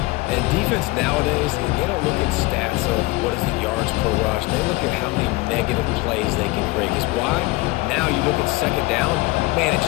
And defense nowadays, they don't look at stats of what is the yards per rush. They look at how many negative plays they can create. Because why? Now you look at second down, man, it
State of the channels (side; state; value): right; quieter; 21.9 dB